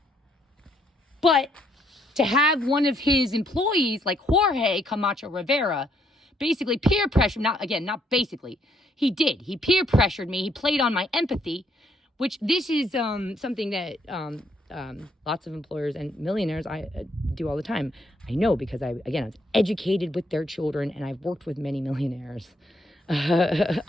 But to have one of his employees, like Jorge Camacho Rivera, basically peer pressure, not basically, he did. He peer pressured me. He played on my empathy, which this is something that lots of employers and millionaires do all the time. I know because I was educated with their children, and I've worked with many millionaires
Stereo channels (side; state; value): both; normal; correlation 0.71